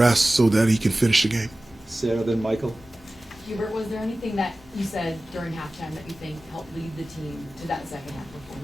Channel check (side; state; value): both; normal; correlation 0.96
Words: so that he can finish the game. Sarah, then Michael. Hubert, was there anything that you said during halftime that you think helped lead the team to that second half